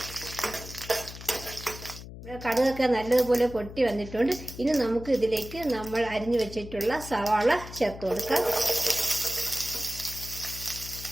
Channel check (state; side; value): noise; left; hum, 13 dB below the sound